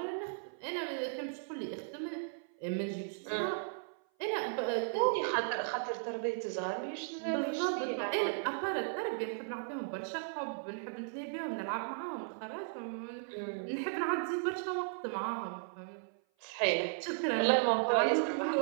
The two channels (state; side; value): silent; left; 54 dB below the other